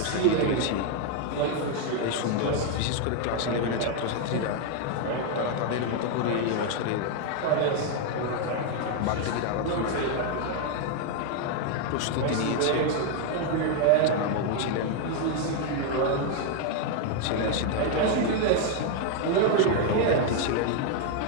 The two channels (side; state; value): both; different; correlation 0.01